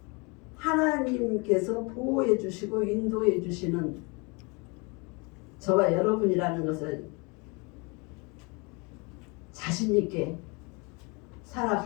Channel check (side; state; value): right; quieter; 29.6 dB